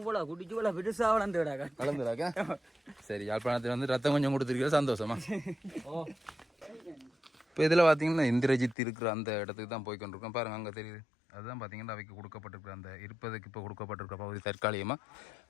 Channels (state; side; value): drops out; right; at 8.8 s